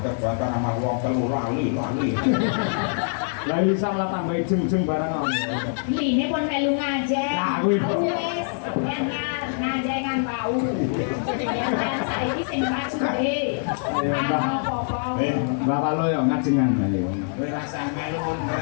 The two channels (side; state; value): right; silent; 58 dB below the other